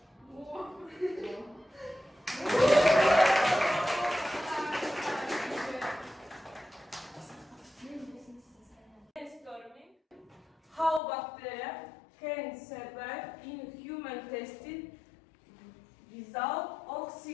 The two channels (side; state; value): right; drops out; at 11.0 s